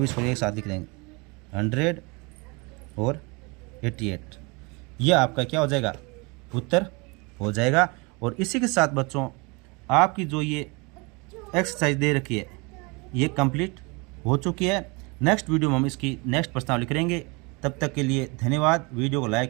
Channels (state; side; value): quieter; left; 28.5 dB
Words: इसको एक साथ लिख देंगे 100 और 88, यह आपका क्या हो जाएगा, उत्तर हो जाएगा। और इसी के साथ बच्चों आपकी जो ये एक्सरसाइज दे रखी है ये कंप्लीट हो चुकी है। नेक्स्ट वीडियो में हम इसकी नेक्स्ट प्रश्नावली करेंगे। तब तक के लिए धन्यवाद। वीडियो को